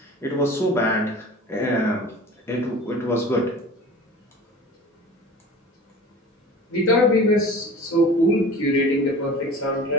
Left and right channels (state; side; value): normal; both; correlation 0.40